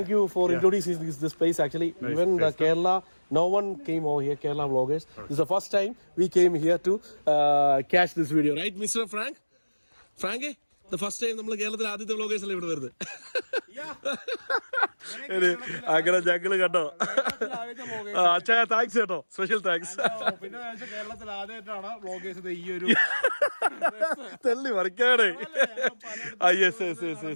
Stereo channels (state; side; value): inverted; both; correlation -1.00